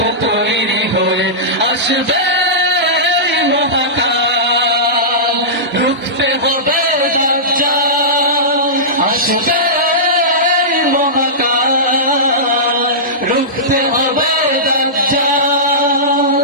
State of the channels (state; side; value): normal; both; correlation -0.17